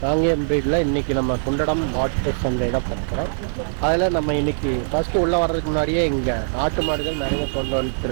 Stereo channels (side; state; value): left; silent; 64 dB below the other